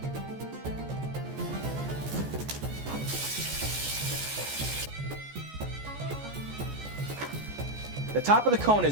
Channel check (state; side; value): late; left; 14 ms